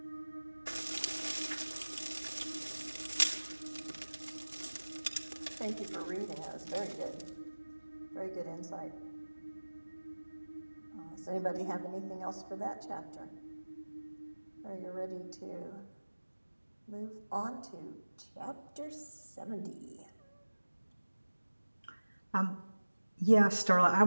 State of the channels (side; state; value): both; inverted; correlation -1.00